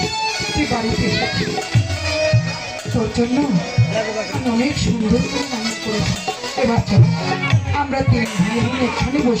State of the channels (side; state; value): both; identical; correlation 1.00